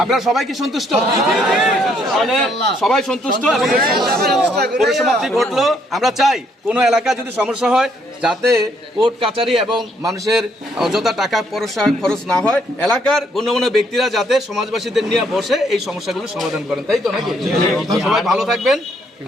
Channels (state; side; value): normal; both; correlation 0.69